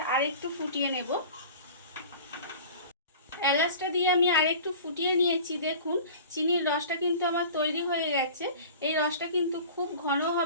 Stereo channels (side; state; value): both; inverted; correlation -0.41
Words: আরেকটু ফুটিয়ে নেব। এলাচটা দিয়ে আমি আরেকটু ফুটিয়ে নিয়েছি। দেখুন চিনির রসটা কিন্তু আমার তৈরি হয়ে গেছে। এই রসটা কিন্তু খুব ঘন